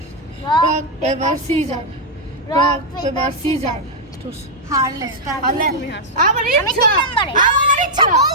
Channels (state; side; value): normal; both; correlation -0.03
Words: rock paper scissor. Rock paper scissor. হারলে হারলে। আবার আমি ইচ্ছা। 3 নম্বরে আমার ইচ্ছা